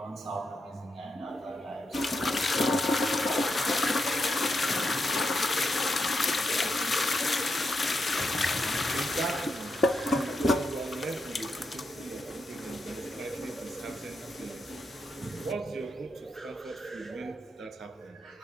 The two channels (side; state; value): both; normal; correlation 0.84